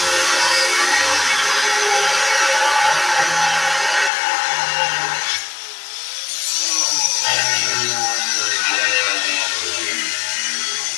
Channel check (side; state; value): right; drops out; at 4.1 s